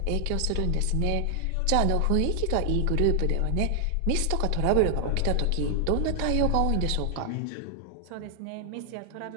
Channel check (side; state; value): both; different; correlation 0.00